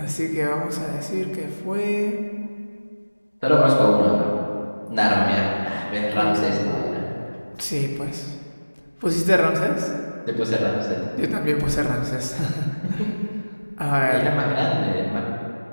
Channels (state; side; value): inverted; both; correlation -1.00